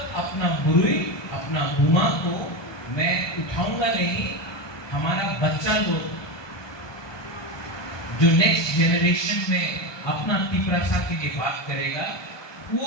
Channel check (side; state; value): right; late; 1.2 ms